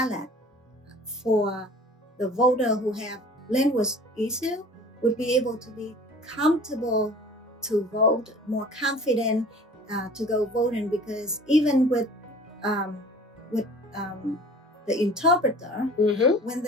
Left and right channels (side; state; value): both; normal; correlation 0.45